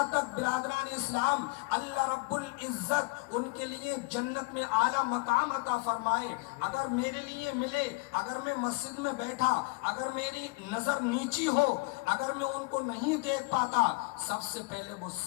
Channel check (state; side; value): quieter; right; 26.9 dB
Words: تک برادران اسلام اللہ رب العزت ان کے لیے جنت میں اعلیٰ مقام عطا فرمائے۔ اگر میرے لیے ملے، اگر میں مسجد میں بیٹھا، اگر میری نظر نیچی ہو، اگر میں ان کو نہیں دیکھ پاتا، سب سے پہلے وہ